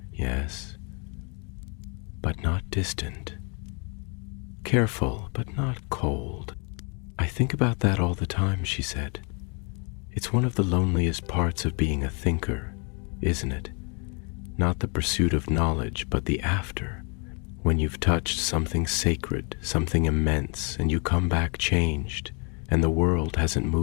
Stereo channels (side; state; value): right; quieter; 35.3 dB